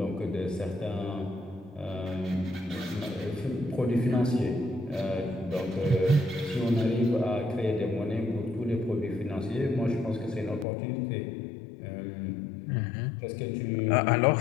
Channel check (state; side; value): drops out; right; at 10.7 s